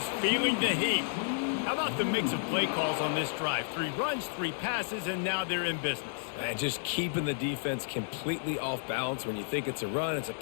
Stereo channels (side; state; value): right; silent; digital silence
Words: feeling the heat. How about the mix of play calls on this drive? 3 runs, 3 passes, and now they're in business. And just keeping the defense completely off balance. When you think it's a run, it's a